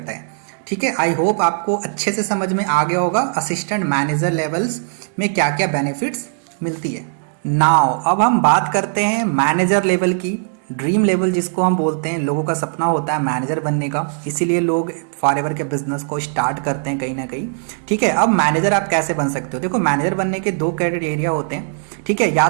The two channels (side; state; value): left; silent; digital silence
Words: है, ठीक है। आई होप आपको अच्छे से समझ में आ गया होगा असिस्टेंट मैनेजर लेवल्स में क्या क्या बेनिफिट्स मिलती है। नाउ अब हम बात करते हैं मैनेजर लेवल की, ड्रीम लेवल जिसको हम बोलते हैं। लोगों का सपना होता है मैनेजर बनने का, इसीलिए लोग फॉरएवर के बिजनेस को स्टार्ट करते हैं कहीं ना कहीं, ठीक है। अब मैनेजर आप कैसे बन सकते हो, देखो मैनेजर बनने के 2 क्राइटेरिया होते हैं, ठीक है। या